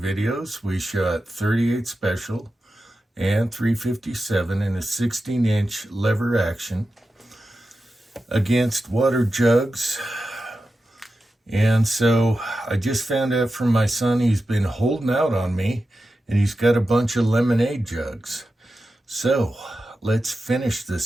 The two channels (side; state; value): both; normal; correlation 0.92